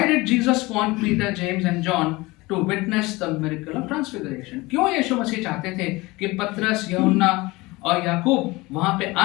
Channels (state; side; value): quieter; right; 21.9 dB